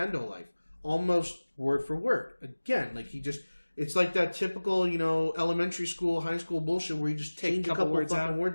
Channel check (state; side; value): inverted; both; correlation -1.00